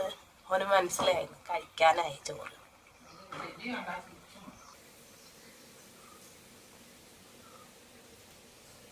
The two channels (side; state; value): both; identical; correlation 1.00